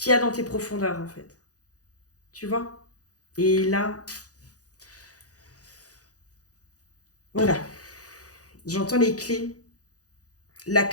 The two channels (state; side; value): late; right; 0.67 ms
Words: y a dans tes profondeurs, en fait. Tu vois? Et là, voilà. J'entends les clés. La